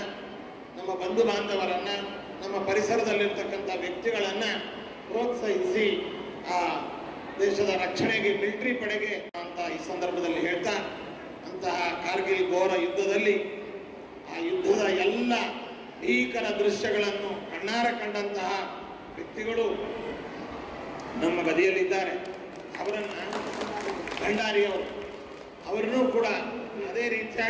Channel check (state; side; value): identical; both; correlation 1.00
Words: ನಮ್ಮ ಬಂಧು ಬಾಂಧವರನ್ನು, ನಮ್ಮ ಪರಿಸರದಲ್ಲಿರ್ತಕ್ಕಂಥ ವ್ಯಕ್ತಿಗಳನ್ನು ಪ್ರೋತ್ಸಾಹಿಸಿ ಆ ದೇಶದ ರಕ್ಷಣೆಗೆ ಮಿಲಿಟರಿ ಪಡೆಗೆ ಅಂತ ಈ ಸಂದರ್ಭದಲ್ಲಿ ಹೇಳ್ತಾ, ಅಂತಹ ಕಾರ್ಗಿಲ್ ಘೋರ ಯುದ್ಧದಲ್ಲಿ ಆ ಯುದ್ಧದ ಎಲ್ಲ ಭೀಕರ ದೃಶ್ಯಗಳನ್ನು ಕಣ್ಣಾರೆ ಕಂಡಂತಹ ವ್ಯಕ್ತಿಗಳು ನಮ್ಮ ಬದಿಯಲ್ಲಿದ್ದಾರೆ. ಅವರನ್ನು ಭಂಡಾರಿಯವರು ಅವರನ್ನೂ ಕೂಡ ಅದೇ